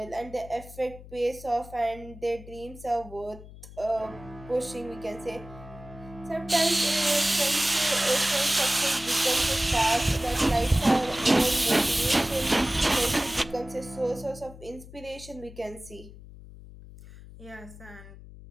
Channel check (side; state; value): left; noise; hum, 17 dB below the sound